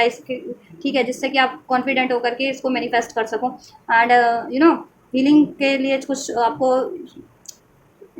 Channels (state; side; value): identical; both; correlation 1.00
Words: इसके, ठीक है, जिससे कि आप कॉन्फिडेंट होकर के इसको मैनिफेस्ट कर सको। एंड हीलिंग के लिए कुछ आपको